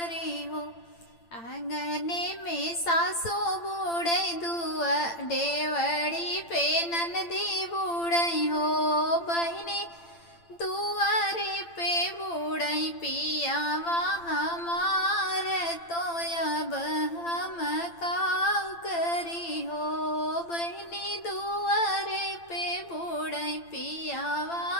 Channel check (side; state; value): right; late; 8.8 ms